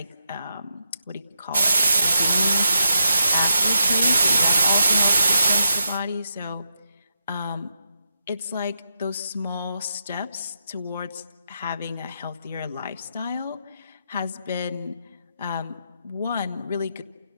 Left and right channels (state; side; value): inverted; both; correlation -0.84